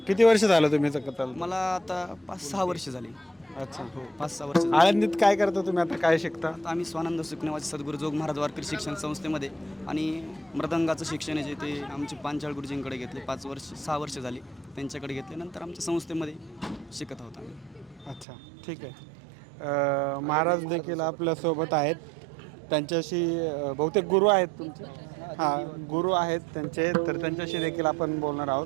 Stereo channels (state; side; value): drops out; left; at 18.2 s